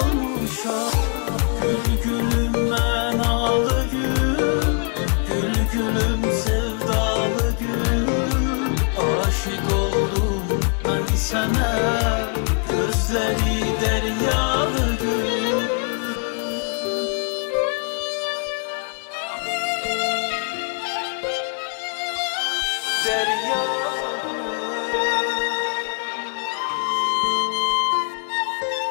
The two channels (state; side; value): quieter; right; 39.8 dB